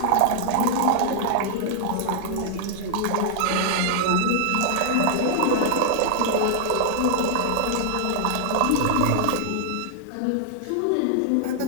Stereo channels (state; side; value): different; both; correlation -0.01